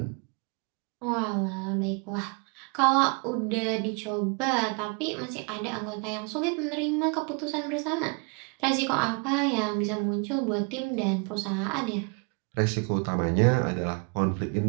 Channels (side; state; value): left; quieter; 34.8 dB